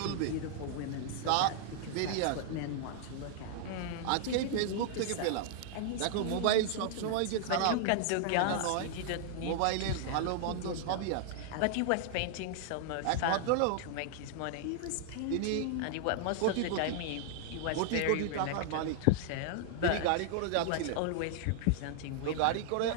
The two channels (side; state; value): both; different; correlation -0.01